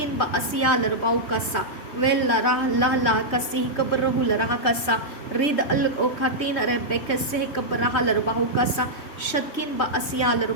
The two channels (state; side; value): late; right; 3.2 ms